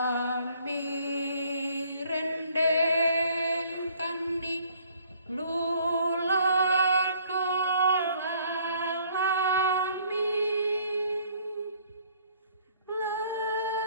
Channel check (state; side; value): inverted; both; correlation -0.60